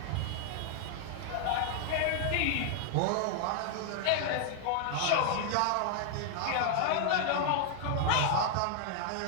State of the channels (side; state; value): both; different; correlation 0.00